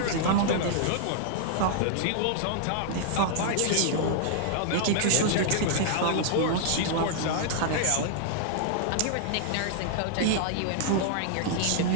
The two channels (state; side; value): different; both; correlation -0.01